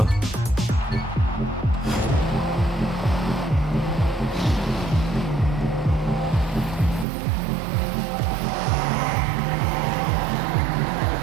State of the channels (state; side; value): drops out; left; at 7.1 s